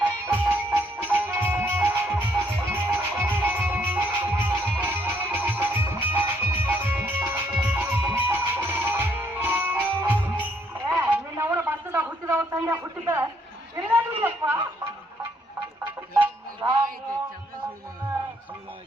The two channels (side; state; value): both; normal; correlation 0.69